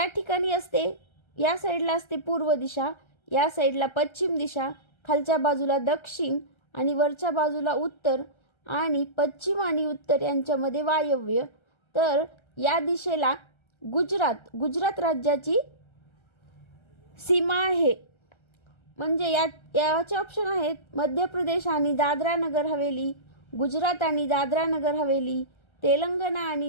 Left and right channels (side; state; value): right; late; 1.3 ms